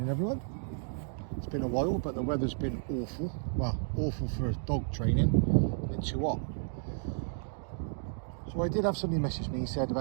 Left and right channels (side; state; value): left; silent; digital silence